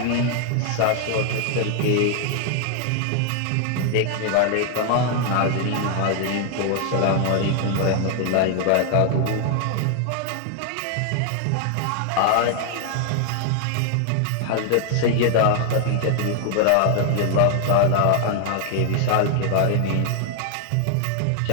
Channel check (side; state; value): both; different; correlation 0.00